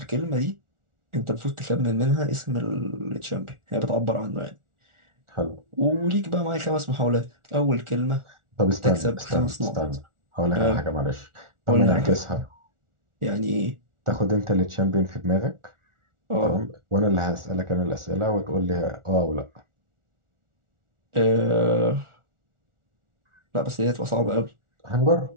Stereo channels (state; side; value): late; left; 1.4 ms